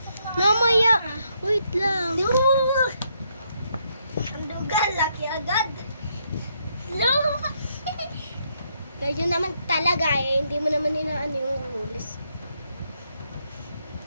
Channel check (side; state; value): both; inverted; correlation -0.76